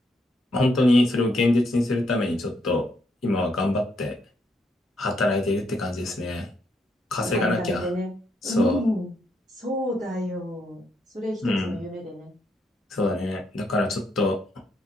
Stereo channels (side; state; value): both; normal; correlation 0.76